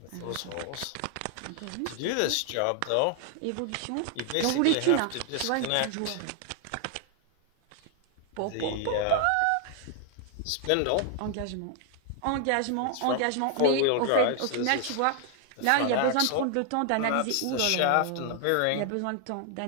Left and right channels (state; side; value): different; both; correlation 0.00